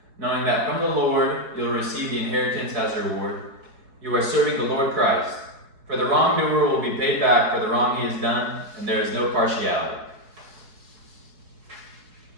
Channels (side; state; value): left; late; 4.7 ms